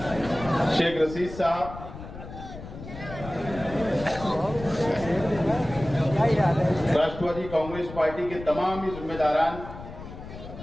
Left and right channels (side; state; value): left; noise; rumble, 12 dB below the sound